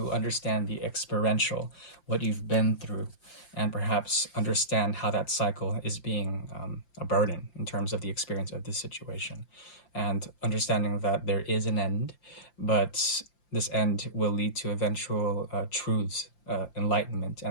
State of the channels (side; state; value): right; late; 5.8 ms